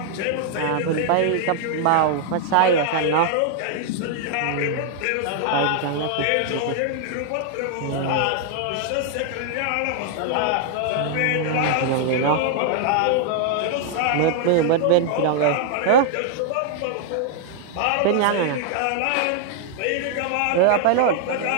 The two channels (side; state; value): both; different; correlation 0.00